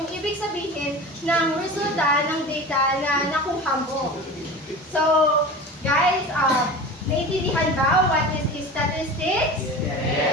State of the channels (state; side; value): normal; both; correlation 0.33